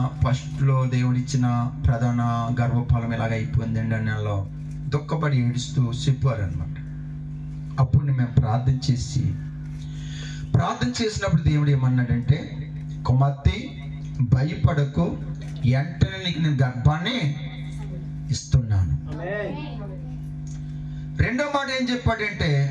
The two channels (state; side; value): identical; both; correlation 1.00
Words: ఫస్ట్లో దేవుడిచ్చిన ప్రధాన గర్భఫలం ఇలాగ అయిపోయింది అండి అని నెలలో దుఃఖపడి ఏడుస్తూ చెప్పారనమాట. అప్పుడు మేము ప్రార్థన చేసినప్పుడు దేవుడు ఏమన్నాడంటే, కుమార్తె భయపడకు, వెంటనే నీకు నేను గర్భాన్ని ఇస్తున్నాను. 2వ మాట ఏం చెప్పాడంటే,